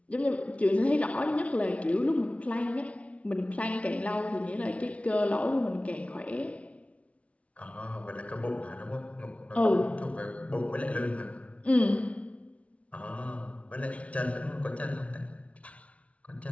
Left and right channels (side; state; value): right; late; 0.064 ms